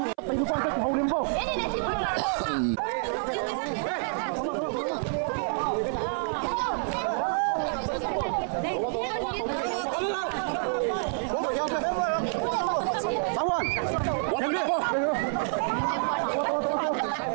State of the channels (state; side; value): silent; left; 58 dB below the other